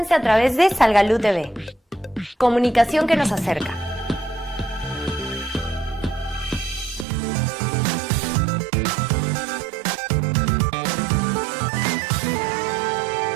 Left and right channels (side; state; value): left; drops out; at 7.1 s